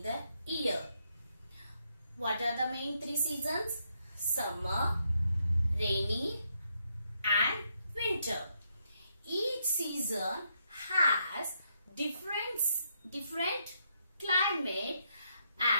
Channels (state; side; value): inverted; both; correlation -0.77